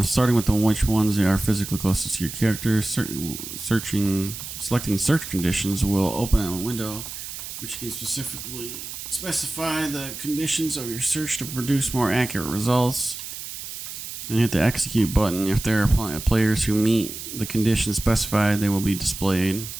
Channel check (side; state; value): right; noise; hiss, 9 dB below the sound